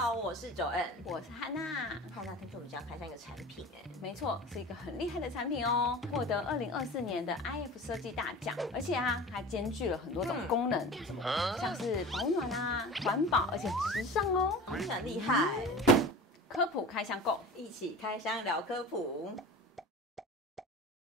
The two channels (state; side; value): normal; both; correlation 0.36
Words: 好，我是Joanne，我是汉娜。汉娜，听说我们家开箱一个产品没错，是一个很厉害的产品哦，获得2024年的 IF 设计大奖，而且还兼具了很多种功能，像是保暖环保，而且时尚哦，很厉害。科普开箱购，一起开箱聊科普。